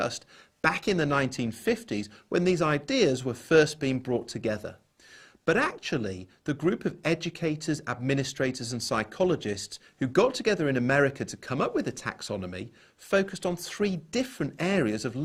back in the 1950s when these ideas were first being brought together. But actually, the group of educators, administrators and psychologists who got together in America to come up with a taxonomy focused on 3 different areas of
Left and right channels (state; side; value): identical; both; correlation 1.00